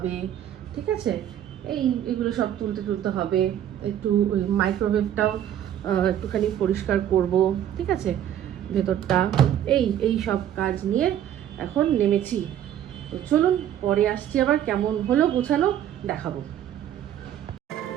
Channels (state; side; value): quieter; left; 10.7 dB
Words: ঠিক আছে? এইগুলো সব তুলতে হবে, একটু ওই মাইক্রোওয়েভটাও একটুখানি পরিষ্কার করব, ঠিক আছে? ভেতরটা এই সব কাজ নিয়ে এখন নেমেছি। তো চলুন পরে আসছি, আবার কেমন হলো গোছানো দেখাবো।